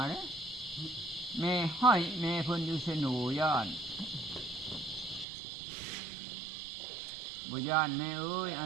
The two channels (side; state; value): left; drops out; at 5.2 s